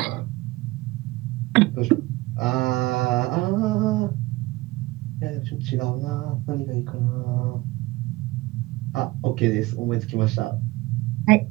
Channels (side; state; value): left; quieter; 20.3 dB